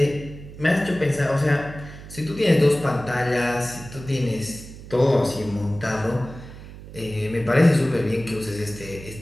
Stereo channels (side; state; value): right; noise; hum, 15 dB below the sound